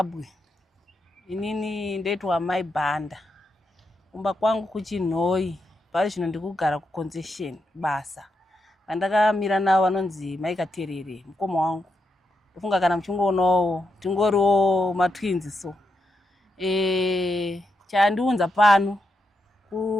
Inini ndoitwa Mai Bhanda. Kumba kwangu kuChinhoi. Pari zvino ndikugara kuConcession basa. Vandakamira navo vanonzi Mai Katerere, mukoma wangu. Ndofunga kana muchingoonawo tingoriwo matwins so. Chandiunza pano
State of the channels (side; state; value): both; normal; correlation 0.84